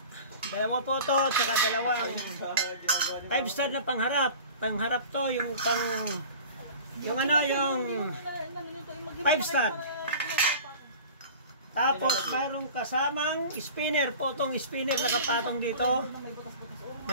Dalawa po to, saka dalawang 5-star na pangharap. Pangharap to, yung yung 5-star. Tapos, mayroong kasamang spinner po. Itong spinner nakapatong dito.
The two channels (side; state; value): both; inverted; correlation -0.40